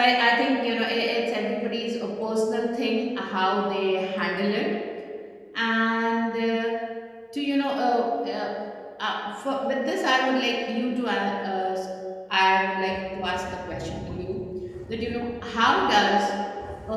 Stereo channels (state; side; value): identical; both; correlation 1.00